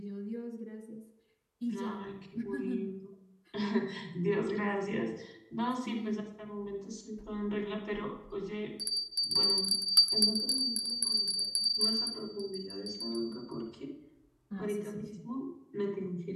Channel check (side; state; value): both; identical; correlation 1.00